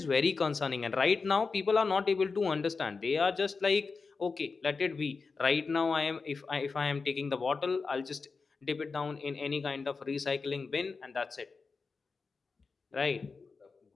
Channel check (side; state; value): right; quieter; 4.6 dB